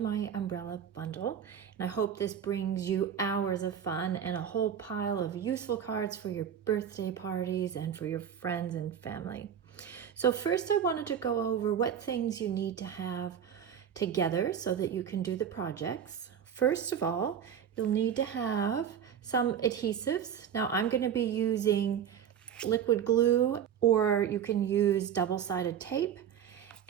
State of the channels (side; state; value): left; quieter; 8.7 dB